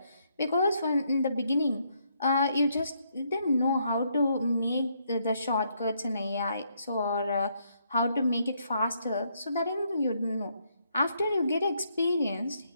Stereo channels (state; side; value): inverted; both; correlation -0.74